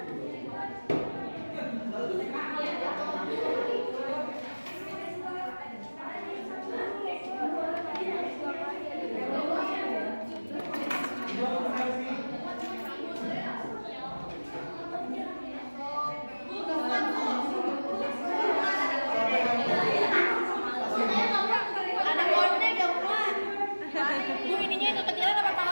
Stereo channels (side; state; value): both; inverted; correlation -1.00